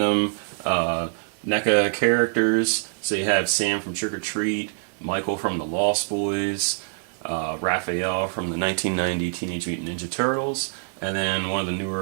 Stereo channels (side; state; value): left; silent; digital silence